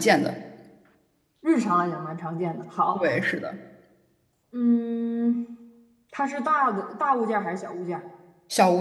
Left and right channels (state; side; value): identical; both; correlation 1.00